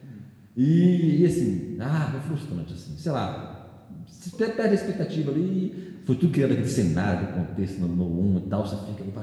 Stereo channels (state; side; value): identical; both; correlation 1.00